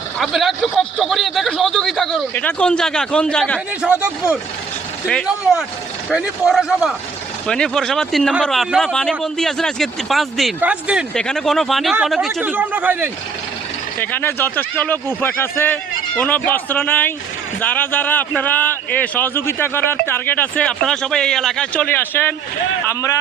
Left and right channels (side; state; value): left; quieter; 5.4 dB